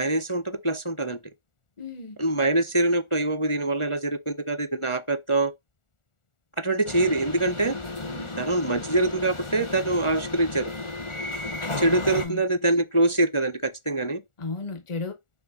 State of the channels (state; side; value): late; right; 1.4 ms